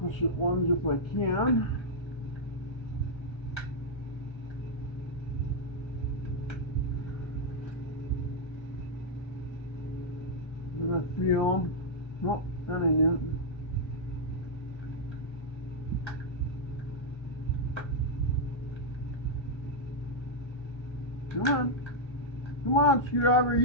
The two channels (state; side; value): late; right; 1.3 ms